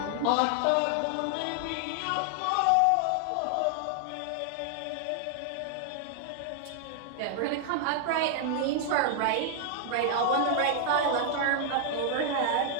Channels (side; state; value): both; different; correlation 0.00